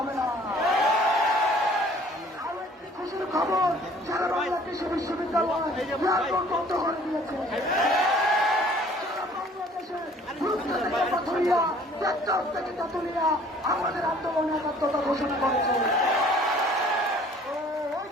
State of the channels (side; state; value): both; normal; correlation 0.54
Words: হবে না। আরো একটি খুশির খবর, সারা বাংলা কৃষি বিশ্ববিদ্যালয় এয়ারপোর্ট বন্ধ করে দিয়েছে। সারা বাংলাদেশের পাথুরিয়া টেকনাফ থেকে তেঁতুলিয়া আমাদের আন্দোলনে একাত্মতা ঘোষণা করেছে। ওই